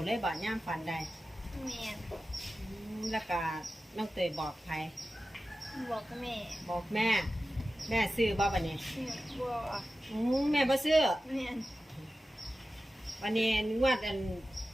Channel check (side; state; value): both; normal; correlation 0.94